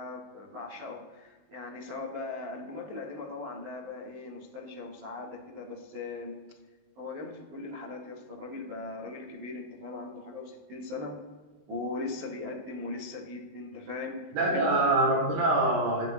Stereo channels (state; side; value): late; left; 20 ms